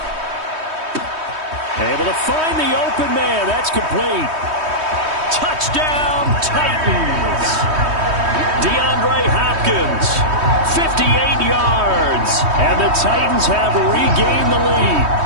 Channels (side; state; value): left; late; 3.2 ms